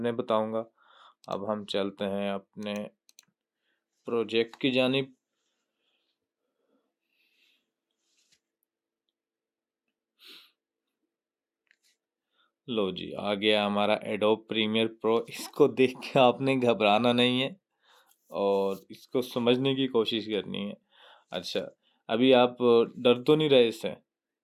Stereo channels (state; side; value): identical; both; correlation 1.00